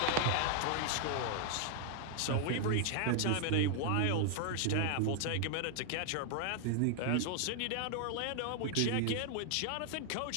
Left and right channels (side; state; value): both; different; correlation 0.00